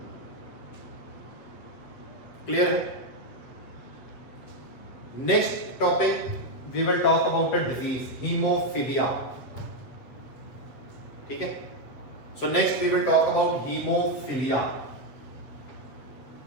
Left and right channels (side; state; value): right; late; 8.1 ms